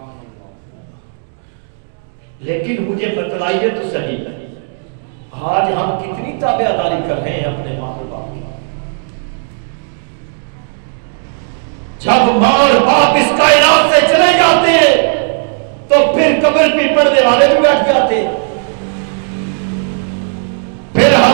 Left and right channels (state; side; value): silent; left; digital silence